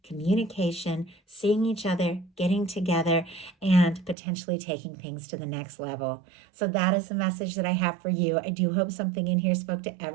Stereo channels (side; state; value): left; drops out; at 4.2 s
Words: communication, seeing each other, getting together, and potentially taking things to the next level. So that is the message that I have for you. I do hope something in here spoke to